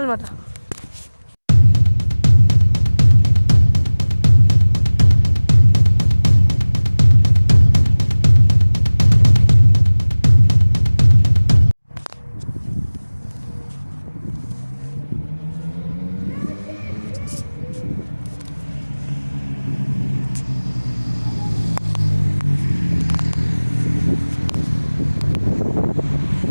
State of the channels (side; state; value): both; inverted; correlation -1.00